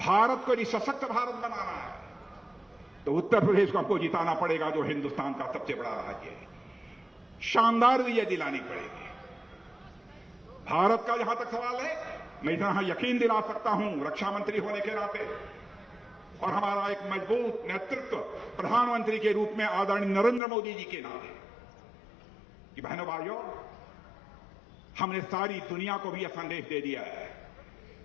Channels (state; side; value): drops out; right; at 20.4 s